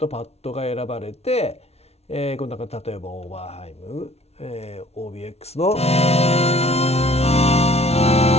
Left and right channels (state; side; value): late; right; 0.31 ms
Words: パッドが選ばれて、この中例えばオーバーハイム、OBX の